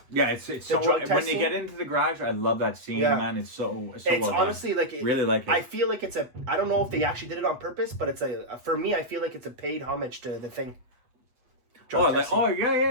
Yeah, it's so when they get into the garage, I love that scene, man. It's so it's well honestly done. Really like it. I feel like it's I don't know if they actually did it on purpose, but it's for me, I feel like it's a paid homage to The Thing. drug testing.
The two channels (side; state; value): left; late; 8.2 ms